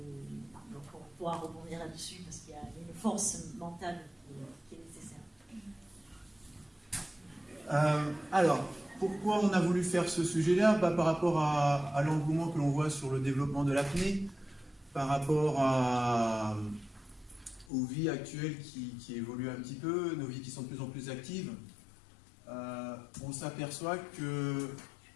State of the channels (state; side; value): drops out; right; at 17.7 s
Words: Donc on pourra rebondir là-dessus parce qu'il y a une force mentale qui est nécessaire. Alors, pourquoi on a voulu faire ce sujet-là? Par rapport à l'engouement que l'on voit sur le développement de l'apnée, par rapport aux vies actuelles qui évoluent un petit peu, nos vies qui sont de plus en plus actives, on s'aperçoit que